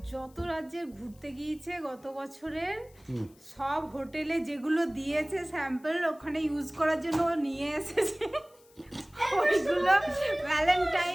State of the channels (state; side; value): noise; left; hiss, 29 dB below the sound